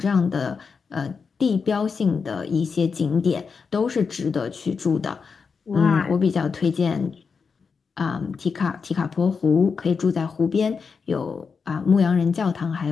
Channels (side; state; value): right; quieter; 5.4 dB